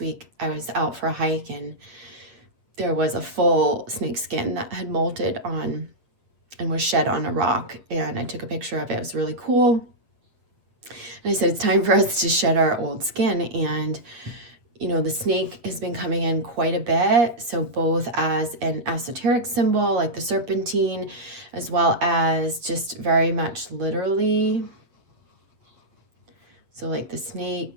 I was out for a hike and there was a full snake skin that had molted on and was shed on a rock, and I took a picture of it. It was really cool. And I said, it's time for us to shed our old skin. And the snake has been coming in quite a bit. So both as an esoteric symbol, like the serpentine, as well as just very much literally. So like the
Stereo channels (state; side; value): late; left; 8.5 ms